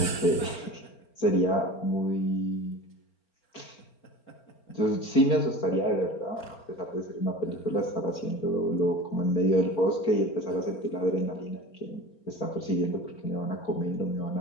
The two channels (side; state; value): right; late; 4.4 ms